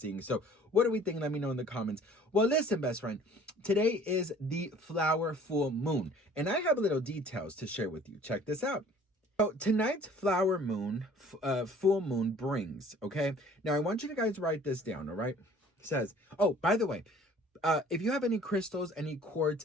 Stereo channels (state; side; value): normal; both; correlation 0.52